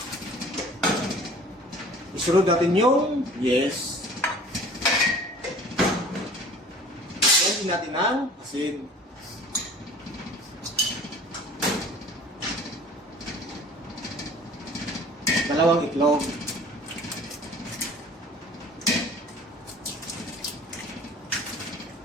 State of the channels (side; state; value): both; normal; correlation 0.47